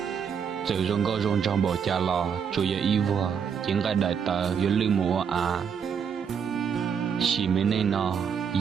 Giờ rong gò rong trong bộ cha lò, chú yo y vua, tiếng gai đại tờ, yo lư mù à. Chỉ mấy này nó,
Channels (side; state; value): left; quieter; 7.1 dB